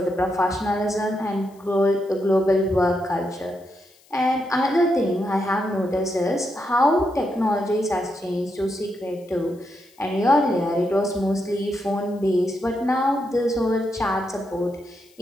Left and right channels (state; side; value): noise; left; hiss, 30 dB below the sound